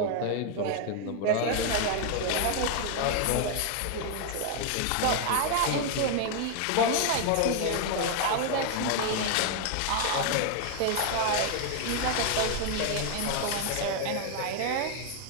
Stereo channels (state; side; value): different; both; correlation 0.00